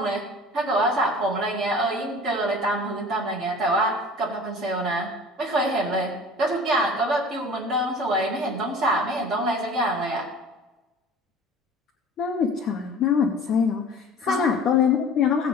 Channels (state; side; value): normal; both; correlation 0.42